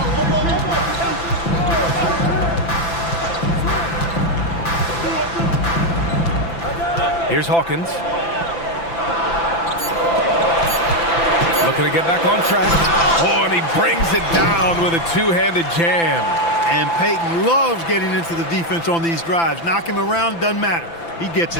Here's Hawkins. Looking to get back on track. Oh, and he brings it down with a 2-handed jam. And Peyton loves getting into the defense on these drives. Knock him around, doesn't matter. He gets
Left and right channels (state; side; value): late; right; 5.9 ms